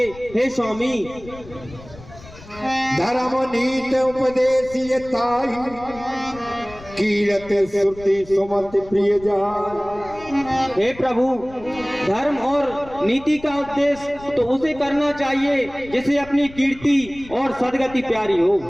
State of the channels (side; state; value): left; noise; rumble, 19 dB below the sound